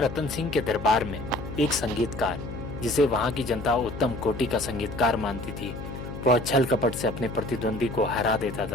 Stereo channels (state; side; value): noise; left; hum, 9 dB below the sound